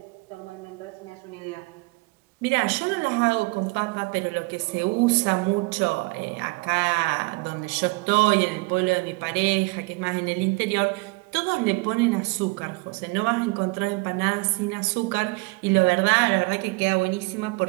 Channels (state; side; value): quieter; left; 27.0 dB